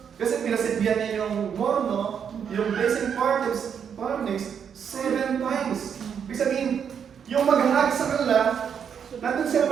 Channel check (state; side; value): quieter; left; 7.6 dB